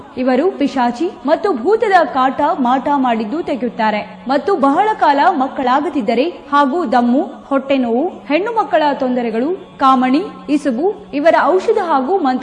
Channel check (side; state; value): both; identical; correlation 1.00